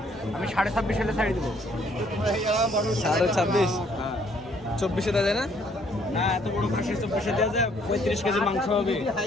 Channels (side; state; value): both; normal; correlation 0.65